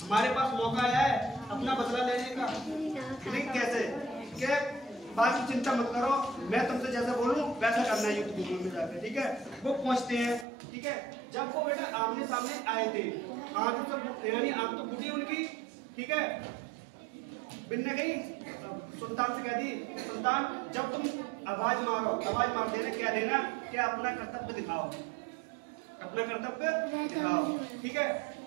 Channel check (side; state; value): left; drops out; at 10.5 s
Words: हमारे पास मौका आया है अपना बदला लेने का, लेकिन कैसे कि बाकी चिंता मत करो, मैं तुमसे जैसा बोलूं वैसा करना है युद्ध भूमि में जाकर, ठीक है। वो पहुंचते हैं, ठीक है। जब वो बेटा आमने सामने आए थे, आंख तो यानी आंख तो फूटी उनकी, ठीक है। बिन्ने गई सुल्तान से कह दी, सुल्तान जब तुम आवाज मार देना, क्या देना कि अपना कर्तव्य दिखाओ, ठीक है।